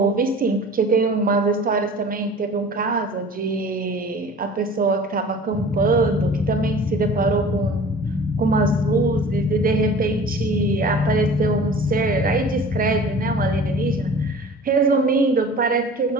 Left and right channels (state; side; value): normal; both; correlation 0.42